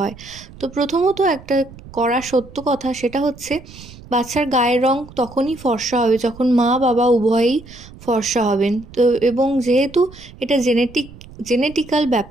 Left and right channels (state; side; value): noise; right; rumble, 19 dB below the sound